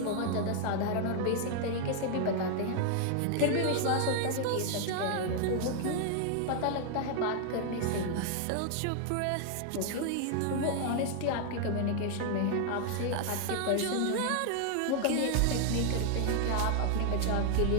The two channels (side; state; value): both; different; correlation 0.00